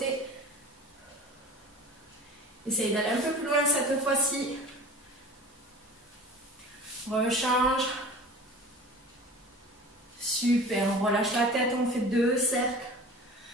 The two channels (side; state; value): both; normal; correlation 0.39